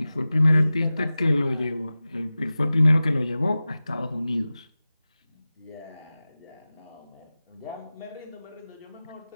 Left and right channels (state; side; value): inverted; both; correlation -0.96